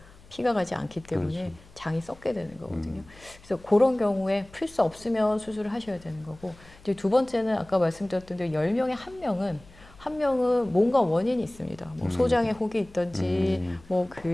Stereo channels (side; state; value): left; noise; hum, 24 dB below the sound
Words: 피가 가지 않기 때문에 그렇죠. 장이 썩게 되는 거거든요. 그래서 그런 경우에 풀 수 없으면 수술을 하셔야 되는 거고, 이제 두 번째는 아까 말씀드렸던 대로 10명에 한 명은 뭔가 원인이 있습니다. 뭐 소장에 혹이 있든지, 뭐 그